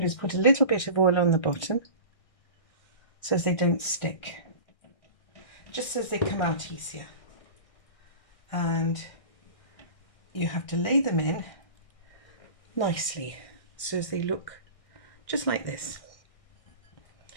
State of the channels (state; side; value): late; right; 1.6 ms